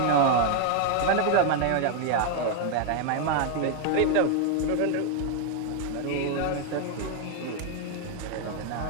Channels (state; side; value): different; both; correlation 0.00